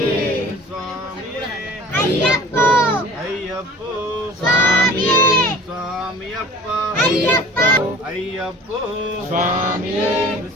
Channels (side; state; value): both; normal; correlation 0.44